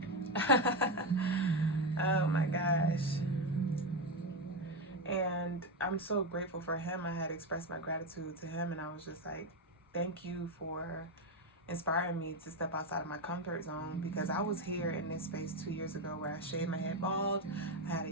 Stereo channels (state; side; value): normal; both; correlation 0.11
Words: Oh my gosh. And I'm so grateful for him. I had expressed my gratitude to him, and I was just like, thank you for inspiring me to step outside of my comfort zone, because I was here in this space 2 years ago where I shaved my head bald. I had a